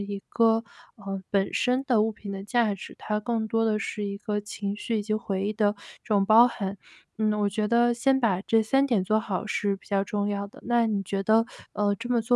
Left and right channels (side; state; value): both; identical; correlation 1.00